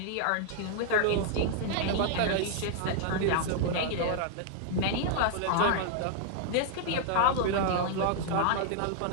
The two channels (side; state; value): both; different; correlation -0.01